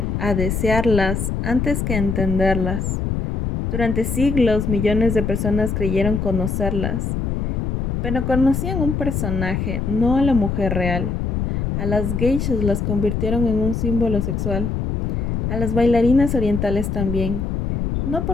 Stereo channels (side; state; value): left; noise; rumble, 1 dB below the sound